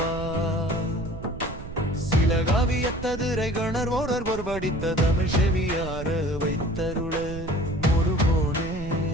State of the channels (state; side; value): noise; right; rumble, 10 dB below the sound